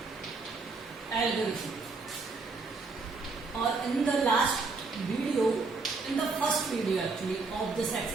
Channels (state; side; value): quieter; left; 4.1 dB